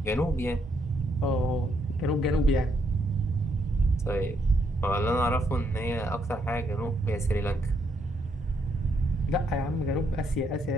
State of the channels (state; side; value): normal; both; correlation 0.75